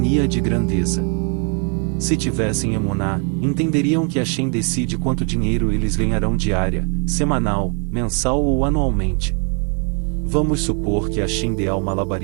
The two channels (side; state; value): left; quieter; 38.9 dB